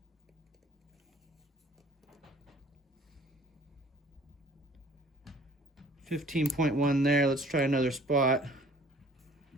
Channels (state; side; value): normal; both; correlation 0.53